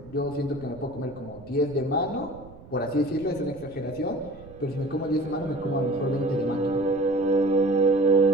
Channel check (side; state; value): right; noise; rumble, 20 dB below the sound